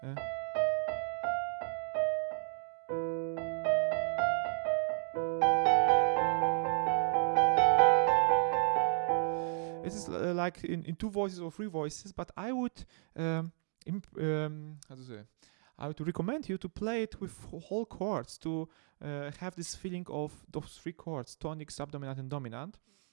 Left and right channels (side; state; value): left; silent; 55 dB below the other